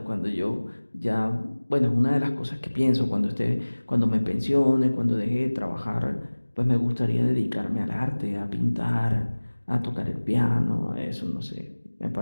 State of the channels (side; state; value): both; inverted; correlation -1.00